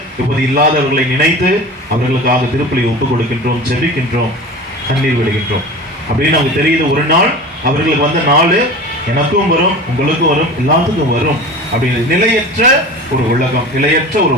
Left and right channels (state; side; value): normal; both; correlation 0.35